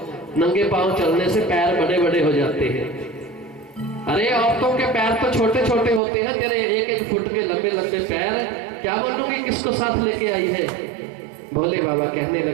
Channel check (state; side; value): drops out; left; at 6.0 s